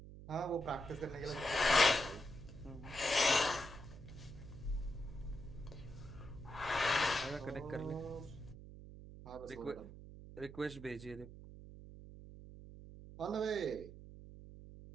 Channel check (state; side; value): noise; right; hum, 14 dB below the sound